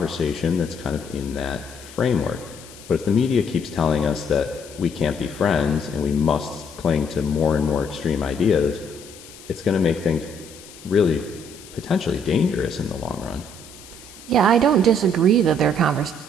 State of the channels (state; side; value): noise; left; hiss, 19 dB below the sound